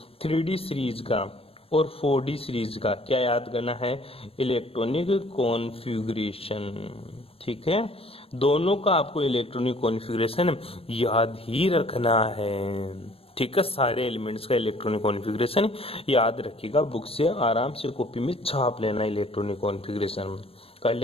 3D सीरीज का और 4D सीरीज का क्या याद करना है, इलेक्ट्रॉनिक कॉन्फ़िगरेशन, ठीक है। दोनों का आपको इलेक्ट्रॉनिक कॉन्फ़िगरेशन याद ही रखना है, ठीक है। सारे एलिमेंट्स का इलेक्ट्रॉनिक कॉन्फ़िगरेशन याद रखिएगा, बुक से आराम से कॉपी में छाप लेना इलेक्ट्रॉनिक कॉन्फ़िगरेशन। कर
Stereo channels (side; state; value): right; late; 0.28 ms